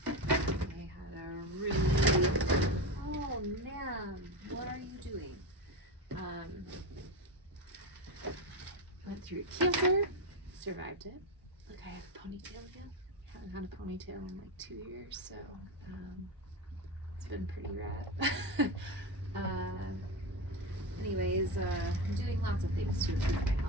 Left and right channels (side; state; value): both; normal; correlation 0.18